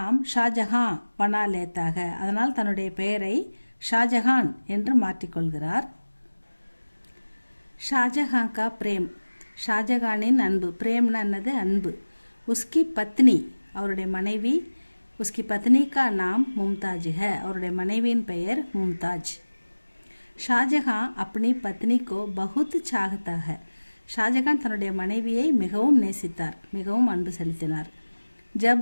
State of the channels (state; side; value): inverted; both; correlation -1.00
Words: ஷாஜஹான் பனா லேத்தாக. அதனால் தன்னுடைய பெயரை ஷாஜஹான் என்று மாற்றிக்கொள்கிறார். ஷாஜஹான் கா பிரேம் ஷாஜஹானின் அன்பு. பிரேம்னா என்னது? அன்பு. உஸ்கி பத்னி அவருடைய மனைவி. உஸ்கி பத்னி கா நாம் மும்தாஜ் ஹை. அவருடைய மனைவியின் பெயர் மும்தாஜ். ஷாஜஹான் அப்பனி பத்னி கோ பகுத் சாகத்தா ஹை. ஷாஜஹான் தன்னுடைய மனைவியை மிகவும் நேசித்தார், மிகவும் அன்பு செலுத்தினார்.